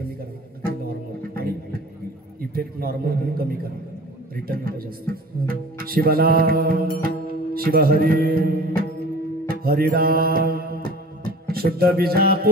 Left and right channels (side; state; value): both; normal; correlation 0.43